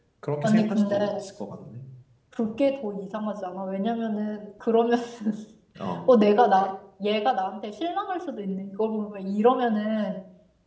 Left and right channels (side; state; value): both; identical; correlation 1.00